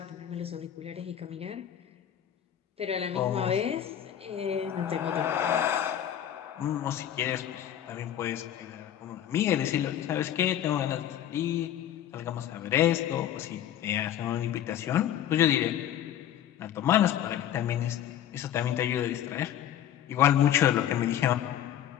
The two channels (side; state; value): right; quieter; 10.8 dB